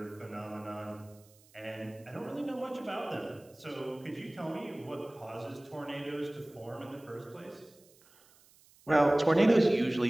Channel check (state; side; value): noise; right; hiss, 28 dB below the sound